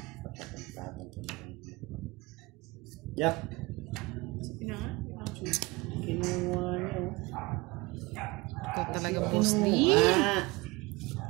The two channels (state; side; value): quieter; left; 23.3 dB